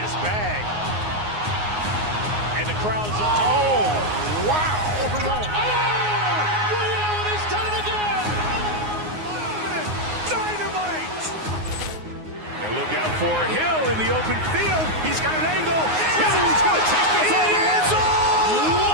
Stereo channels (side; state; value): left; late; 9.6 ms